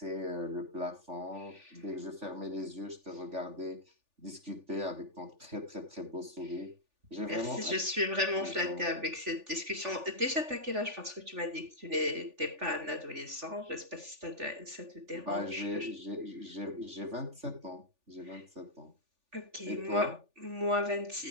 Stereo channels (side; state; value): left; late; 3.4 ms